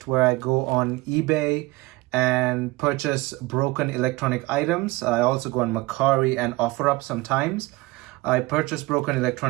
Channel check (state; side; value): quieter; left; 21.5 dB